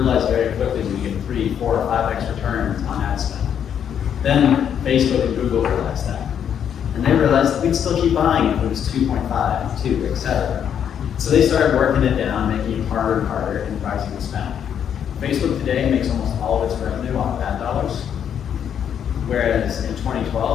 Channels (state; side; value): quieter; right; 8.7 dB